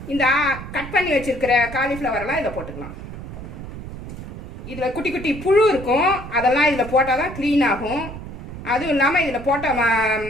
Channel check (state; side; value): noise; right; rumble, 11 dB below the sound